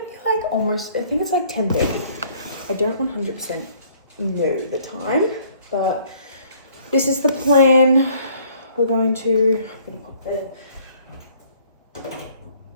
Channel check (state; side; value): inverted; both; correlation -0.59